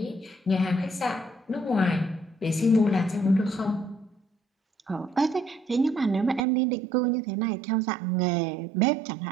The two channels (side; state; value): left; drops out; at 6.5 s